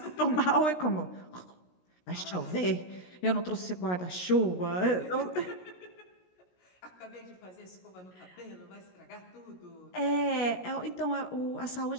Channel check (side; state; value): right; late; 16 ms